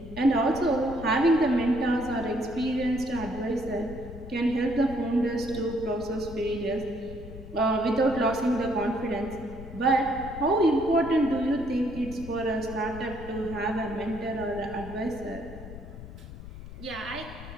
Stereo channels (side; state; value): left; noise; rumble, 13 dB below the sound